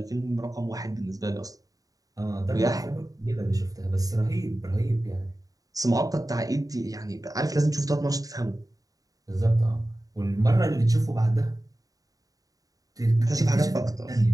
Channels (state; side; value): late; left; 0.17 ms